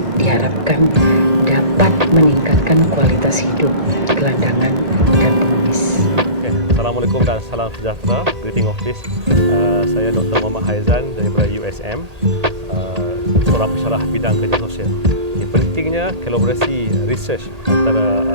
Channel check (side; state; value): left; late; 1.8 ms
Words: diharapkan dapat meningkatkan kualitas hidup gelandangan dan pengemis. Assalamualaikum dan salam sejahtera. Greeting of peace. Saya Dr. Muhammad Haizan daripada USM, seorang pensyarah bidang kerja sosial. Pentingnya kolaborasi research antara